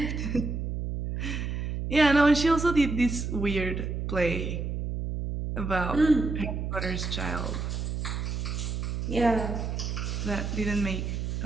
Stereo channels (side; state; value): right; noise; hum, 3 dB below the sound